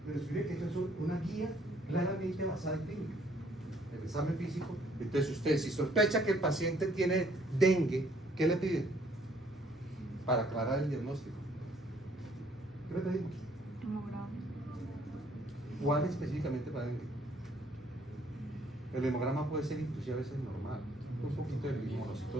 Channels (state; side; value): normal; both; correlation 0.63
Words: Pero escribe que eso es una guía claramente basada en clínica. El examen físico. Entonces ustedes, si sospecha que el paciente tiene dengue, ¿qué le piden? Para aclarar el diagnóstico. ¿Qué le pedimos? Hemograma. ¿Cuál específicamente para dengue? El hemograma puede ser inclusive a veces normal, un poquito de